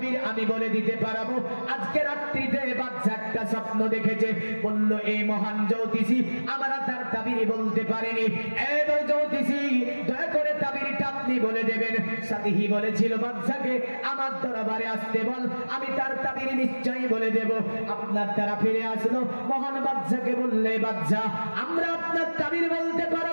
আমি বলে দিতে পারবো। আজকে রাত্রিতে বাচ্চা একটা স্বপ্ন দেখেছে, বলল এই মহান জ্যোতিষী আমরা তার তাবিরই বলতে পারিনি, এই জ্যোতিষী দয়া করে তাবিরটা আপনি বলে দেবেন। সাথী বলেছিল বাচ্চাকে আমার দরবারে আসতে বল, আমি তার তাবির নিশ্চয়ই বলে দেব। আপনার দ্বারা ফিরে আসলো, মহান বাচ্চাকে বললে বাচ্চা আমরা আপনার তাবির বলতে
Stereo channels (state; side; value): inverted; both; correlation -1.00